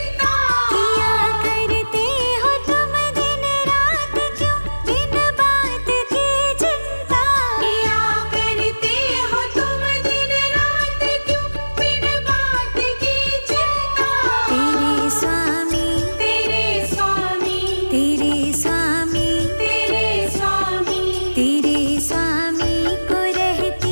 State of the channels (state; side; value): inverted; both; correlation -1.00